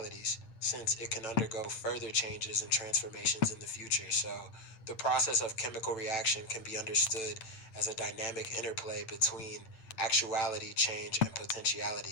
since it can undergo further changes and transformations in the future. So, the process of chemical reaction can be understood as a dynamic interplay between actuality, change, and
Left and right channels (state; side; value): late; right; 8.8 ms